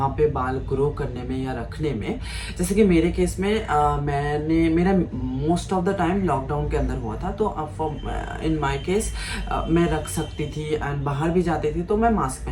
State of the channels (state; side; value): identical; both; correlation 1.00